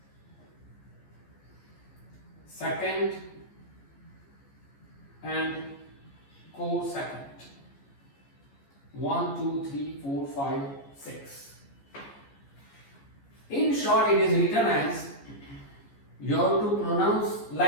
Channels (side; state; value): right; late; 14 ms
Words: secant, and cosecant. 1, 2, 3, 4, 5, 6. In short, it is written as, you have to pronounce